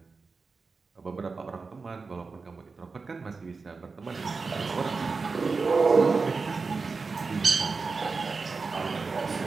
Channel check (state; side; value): quieter; left; 4.4 dB